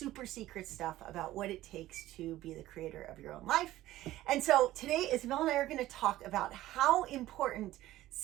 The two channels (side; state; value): left; quieter; 15.4 dB